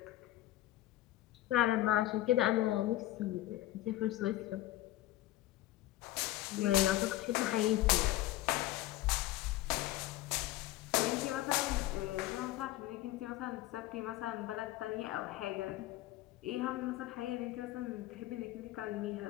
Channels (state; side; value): quieter; right; 15.7 dB